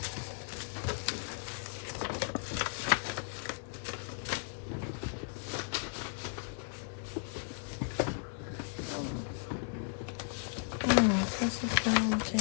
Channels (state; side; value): silent; right; 54 dB below the other